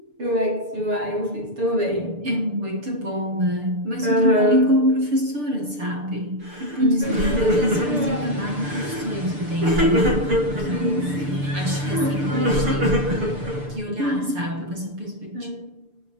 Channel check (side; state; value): left; late; 6.8 ms